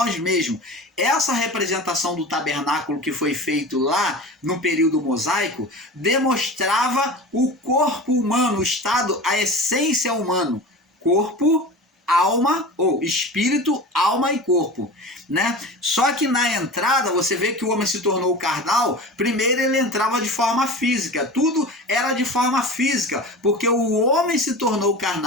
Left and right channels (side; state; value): both; normal; correlation 0.33